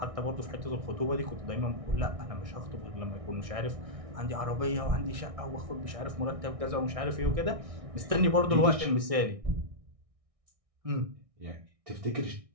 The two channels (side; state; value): left; late; 1.6 ms